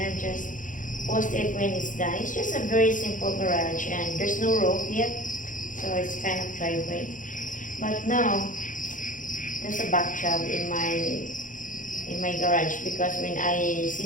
just post it when it's done. It's just a very simple garage, and there's no roof yet, so it's kind of driveway. But now there's a back job in my garage, because when I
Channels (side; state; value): right; late; 0.38 ms